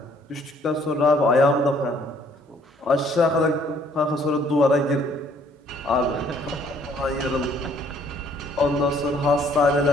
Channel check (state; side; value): normal; both; correlation 0.62